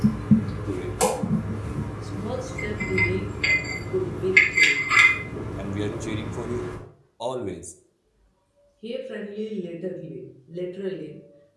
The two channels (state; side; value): identical; both; correlation 1.00